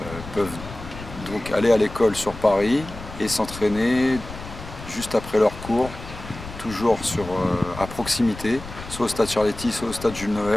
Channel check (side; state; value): left; noise; rumble, 13 dB below the sound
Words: peuvent donc aller à l'école sur Paris et s'entraîner juste après leur cours, toujours à proximité, soit au stade Charletti, soit au stade Jules